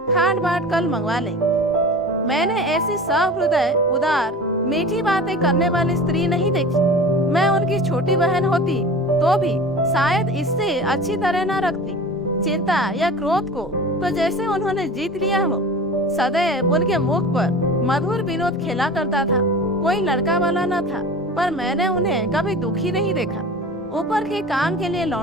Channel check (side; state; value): both; normal; correlation 0.37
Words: खाट बाट कल मंगवा लेंगे। मैंने ऐसी सहृदय, उदार, मीठी बातें करने वाली स्त्री नहीं देखी। मैं उनकी छोटी बहन होती तो भी शायद इससे अच्छी तरह न रखती। चिंता या क्रोध को तो जैसे उन्होंने जीत लिया हो। सदैव उनके मुख पर मधुर विनोद खेला करता था। कोई लड़का वाला न था, पर मैंने उन्हें कभी दुखी नहीं देखा। ऊपर के काम के लिए